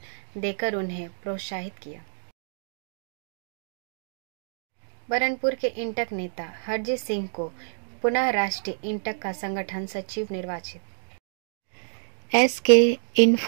देकर उन्हें प्रोत्साहित किया। बरनपुर के इंटक नेता हरजीत सिंह को पुनः राष्ट्रीय इंटक का संगठन सचिव निर्वाचित। SK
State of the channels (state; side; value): silent; left; digital silence